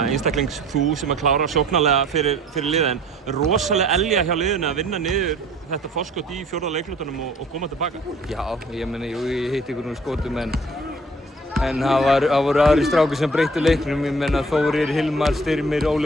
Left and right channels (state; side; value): normal; both; correlation 0.52